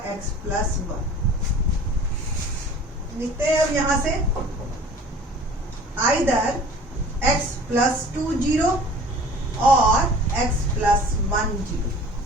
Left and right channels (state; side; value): normal; both; correlation 0.46